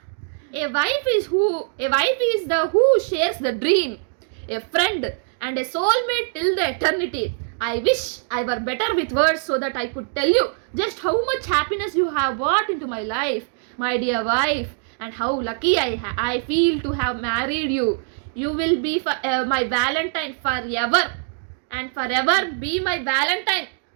A wife is the who shares the dream, A friend and a soulmate till the eternity. I wish I were better with words so that I could tell you just how much happiness you have brought into my life, my dear wife, and how lucky I feel to have married you. You will be my valentine forever and forever be my valentine.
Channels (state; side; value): silent; left; 64 dB below the other